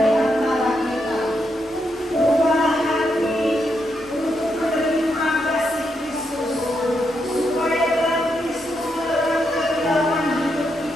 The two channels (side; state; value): both; normal; correlation 0.81